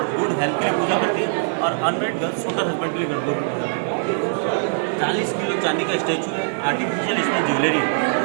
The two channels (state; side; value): silent; left; digital silence